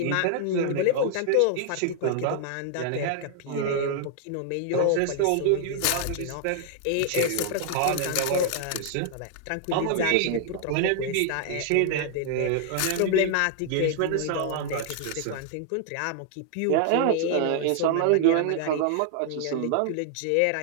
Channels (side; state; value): both; different; correlation 0.00